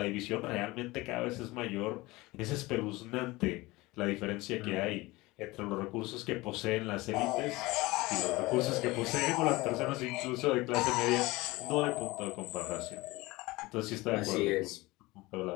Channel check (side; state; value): right; quieter; 21.1 dB